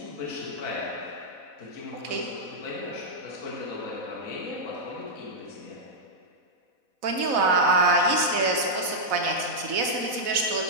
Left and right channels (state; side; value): late; left; 4.0 ms